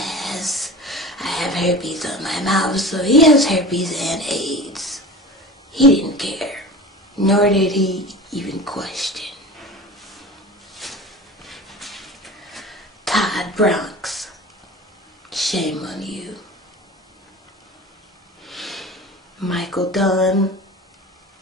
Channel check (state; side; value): normal; both; correlation 0.35